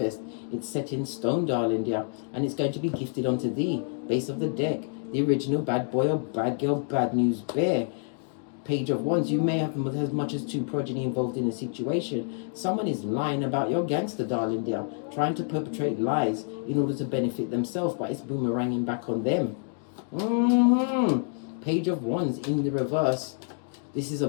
it's set in stone, darling dear. And it's going to be gifted onto thee. Base of the deck. The original bad boy or bad girl, bad news bear. Page of Wands. You may have as much as 2 progeny involved in a situation. Someone is lying about your gangster, darling dear. Trying to perpetrate lies in order to benefit themselves, but it's boomeranging back on them. Page of Wands in the reverse. This is a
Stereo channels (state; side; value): silent; right; 60 dB below the other